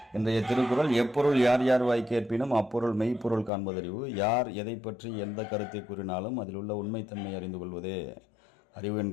இன்றைய திருக்குறள், எப்பொருள் யார் யார் வாய் கேட்பினும் அப்பொருள் மெய்ப்பொருள் காண்பதறிவு. யார் எதை பற்றி எந்த கருத்தை கூறினாலும் அதில் உள்ள உண்மைத்தன்மை அறிந்து கொள்வதே அறிவு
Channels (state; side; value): drops out; right; at 3.5 s